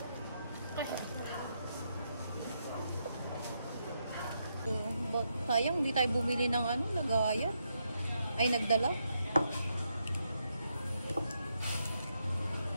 Sayang, hindi tayo bumili ng ano, lagaya. Ay, nagdala.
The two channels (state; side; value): inverted; both; correlation -0.81